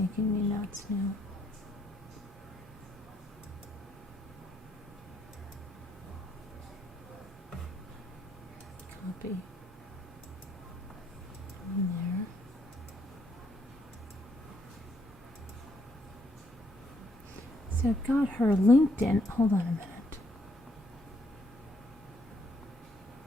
me nuts now. Copy. In there. So I've got her LinkedIn. Hold on a minute.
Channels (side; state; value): both; normal; correlation 0.73